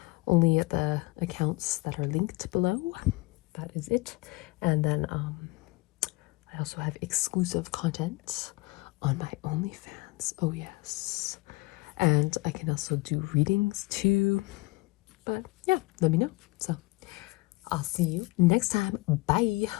only at the accounts that are linked below. That is it. And then I also have exclusive content on my OnlyFans. Oh yes. And I can also do readings too. But yeah, let me know. So I'll see you next time. Bye.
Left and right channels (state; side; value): quieter; right; 23.5 dB